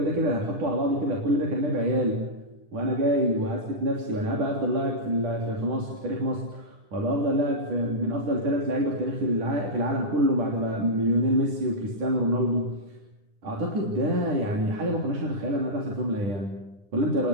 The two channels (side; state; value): left; late; 10 ms